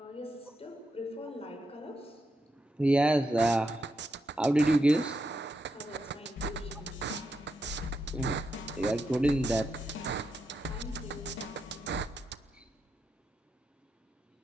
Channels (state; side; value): normal; both; correlation 0.84